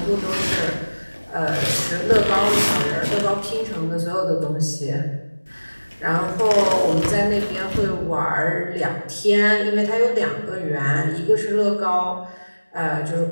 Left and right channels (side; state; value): both; inverted; correlation -1.00